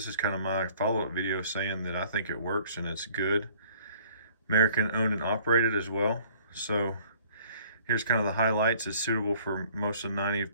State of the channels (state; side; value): inverted; both; correlation -0.56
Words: is kind of my follow-up video saying that I think it works and it's good. American owned and operated as well. So here's kind of the highlights. It's suitable for most of